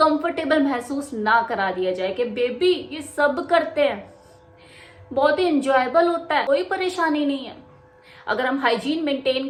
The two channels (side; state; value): both; identical; correlation 1.00